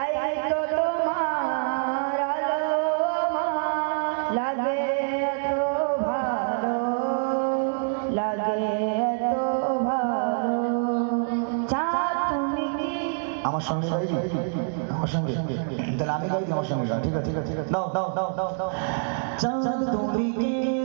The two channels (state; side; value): silent; left; digital silence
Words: তো তোমার আলো আমার লাগে এত ভালো, লাগে এত ভালো। চাঁদ তুমি কি আমার সঙ্গে গাইবি? আমার সঙ্গে তাহলে আমি গাইবি, আমার সঙ্গে গা। ঠিক আছে ঠিক আছে দাও দাও দাও দাও দাও। চাঁদ তুমি কি